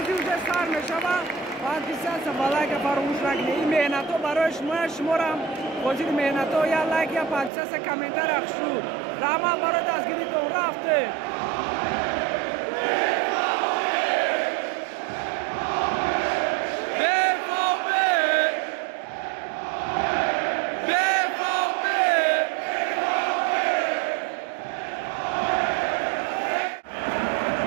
уже сар мешава подписаться ва лайка фаромӯш накунед. ин меҳнато барои шуморам ҳозири меҳнато я лайк я подписаться комментар ахшу раҳмат барои дастгиритон рафтем.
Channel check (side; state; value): left; drops out; at 7.5 s